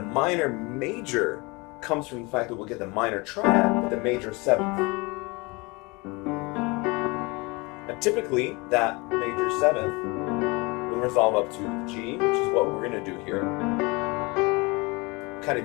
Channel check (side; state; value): right; quieter; 26.2 dB